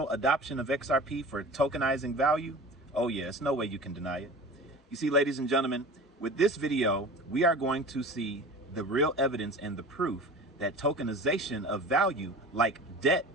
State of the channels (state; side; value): normal; both; correlation 0.37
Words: adoption of XRP for tokenizing value, oh yeah, it's no way you can deny it. You see, ladies and gentlemen, with this video, we are going to see the real evidence and the proof that tokenization of value, like debt,